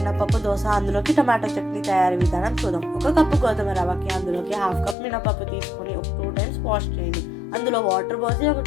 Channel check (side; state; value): right; drops out; at 5.0 s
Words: దోశ, అందులోకి టమాటో చట్నీ తయారీ విధానం చూద్దాం. ఒక కప్పు గోధుమ రవ్వకి అందులోకి హాఫ్ కప్ మినపప్పు తీసుకొని ఒక 2 times వాష్ చేయండి. అందులో వాటర్ పోసి ఒక